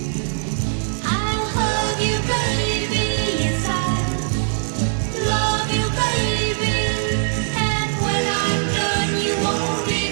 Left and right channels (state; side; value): silent; left; 65 dB below the other